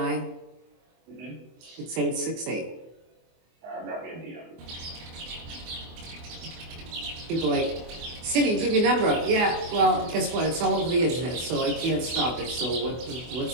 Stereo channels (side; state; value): left; late; 24 ms